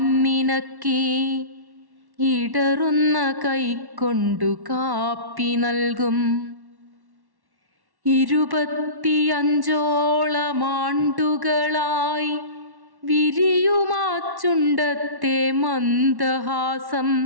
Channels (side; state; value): left; late; 1.1 ms